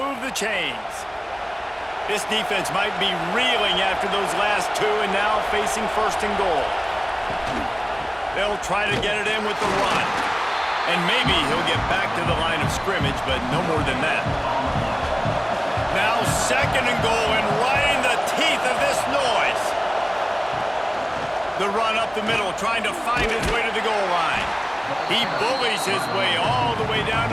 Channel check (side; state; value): both; identical; correlation 1.00